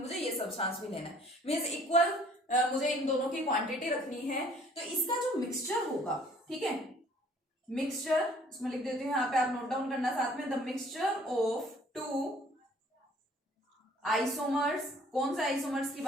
ये सब्सटेंस भी लेना है। मींस इक्वल मुझे इन दोनों की क्वांटिटी रखनी है। तो इसका जो मिक्सचर होगा, ठीक है, मिक्सचर इसमें लिख देती हूँ, यहाँ पे आप नोट डाउन करना साथ में, the mixture of two isomers, कौन से आइसोमर्स की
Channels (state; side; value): normal; both; correlation 0.56